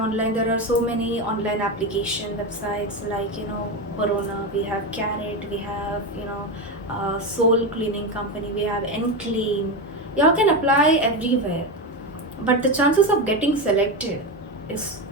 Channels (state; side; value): normal; both; correlation 0.15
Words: There are so many online application websites, like, Corona, we have Carrot, we have, Soul Cleaning Company, we have Enclean. You all can apply everywhere, but the chances of getting selected is